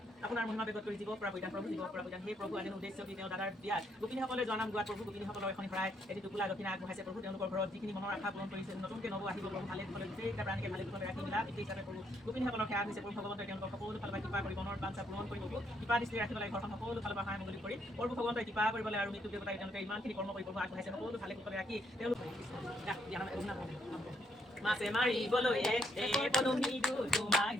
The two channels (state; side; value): normal; both; correlation 0.73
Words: আপোনাৰ মহিমা বেগত কৰি জীৱ পৰা পৰিধান প্ৰভু জীৱ পৰা পৰিধান সেই প্ৰভু আজিৰ উদ্দেশ্য কি তেওঁ দাদাৰ বিয়াত গোপিনীসকলে জনাম গোৱাত প্ৰভু গোপিনীসকলৰ এখন শৰাই এটি টোপোলা দক্ষিণা আগবঢ়াইছে প্ৰভু তেওঁলোকৰ ঘৰত যিখিনি মনৰ আশা পূৰণ কৰিছে নতুনকৈ নব আহিব প্ৰভু ভালে কুশলে গোটেইটা প্ৰাণীকে ভালে কুশলে ৰাখি মিলা পিতৃ হিচাপে প্ৰভু গোপিনীসকলৰ সেৱা হৈছে প্ৰভু ভগৱন্তই তেওঁলোকৰ সকলো ফালৰ পৰা কৃপা কৰি মনৰ বাঞ্ছা পূৰণ কৰি প্ৰভু কৃপা দৃষ্টি ৰাখিব লাগে ঘৰখন সকলো ফালৰ পৰা সহায় মঙ্গল কৰি প্ৰভু ভগৱন্তই কৃপা কৰিবলৈ আৰু মৃত্যু দেৱতাই তেওঁলোকে ইমানখিনি কৰ্ম কৰি প্ৰভু আগবঢ়াইছে সকলো ভালে কুশলে ৰাখি তেওঁলোকে মাছে মাৰিবলৈ পদুমীটো তোমাক